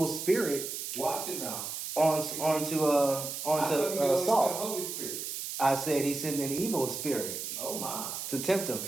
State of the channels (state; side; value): noise; right; hiss, 5 dB below the sound